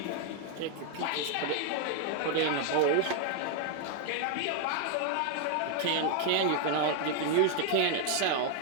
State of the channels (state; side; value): different; both; correlation 0.00